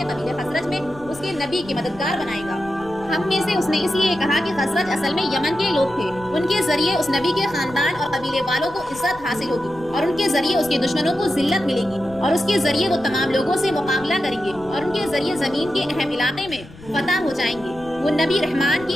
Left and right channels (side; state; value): left; noise; rumble, 19 dB below the sound